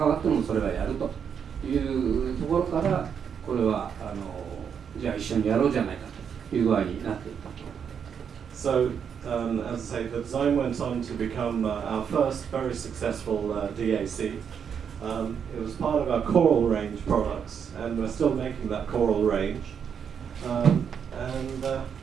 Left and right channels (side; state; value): left; quieter; 7.4 dB